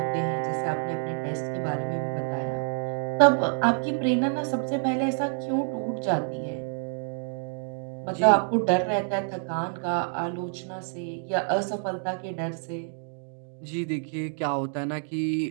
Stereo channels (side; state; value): left; silent; 60 dB below the other